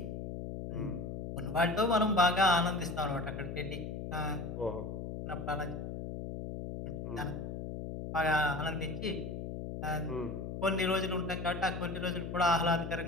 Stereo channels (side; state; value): left; noise; hum, 6 dB below the sound